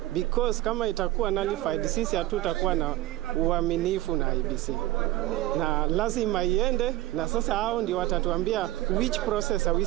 because kama itakuwa nullified, sisi hatutakuwa na uaminifu na IEBC, na lazima iende, na sasa hao ndio watatuambia which process are we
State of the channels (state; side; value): quieter; left; 16.8 dB